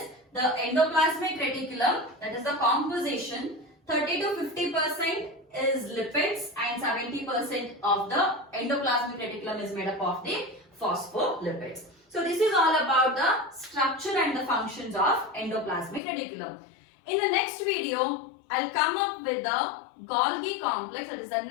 the endoplasmic reticulum, that is the composition, 30 to 50% is lipids and 70% of the endoplasmic reticulum is made up of the phospholipids. So this is all about the structure and the functions of endoplasmic reticulum. In the next video, I'll come up with the Golgi complex, that is the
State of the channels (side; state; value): right; drops out; at 16.0 s